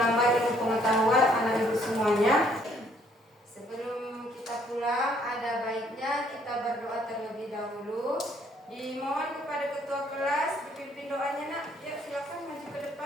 ilmu pengetahuan anak Ibu semuanya. Sebelum kita pulang, ada baiknya kita berdoa terlebih dahulu. Dimohon kepada ketua kelas dipimpin doanya, Nak. Ya, silakan maju ke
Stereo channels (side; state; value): both; normal; correlation 0.65